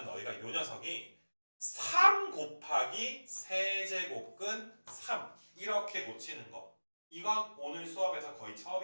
너희가 요 녀석이 3 곱하기 세제곱근 3 이렇게 고치는 거. 이건 오늘 수업에서 거의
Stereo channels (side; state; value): both; inverted; correlation -1.00